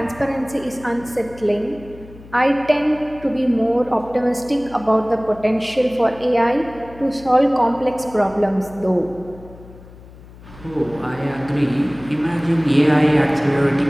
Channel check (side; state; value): left; noise; hum, 20 dB below the sound